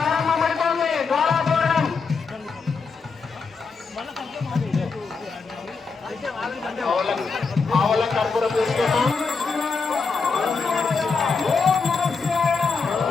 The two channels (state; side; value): quieter; right; 4.8 dB